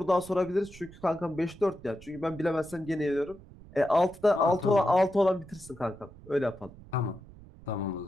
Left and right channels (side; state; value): right; noise; rumble, 20 dB below the sound